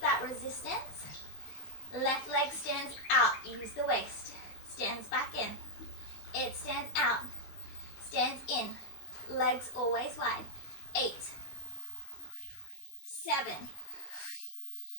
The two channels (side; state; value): right; late; 18 ms